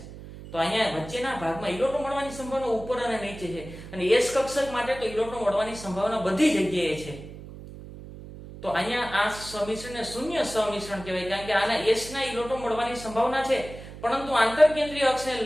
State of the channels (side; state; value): right; noise; hum, 14 dB below the sound